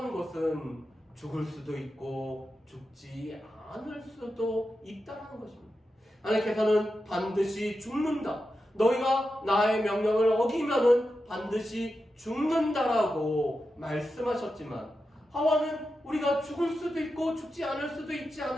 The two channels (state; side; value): normal; both; correlation 0.90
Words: 것은 죽을 수도 있고 죽지 않을 수도 있다는 것입니다. 하나님께서는 반드시 죽는다. 너희가 나의 명령을 어기면은 반드시 죽는다라고 말씀하셨지만 하와는 우리가 죽을 수도 있고 죽지 않을 수도 있지